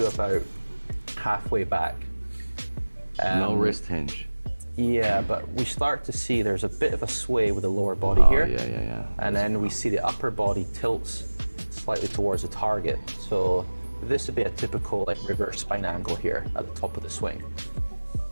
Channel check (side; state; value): both; inverted; correlation -1.00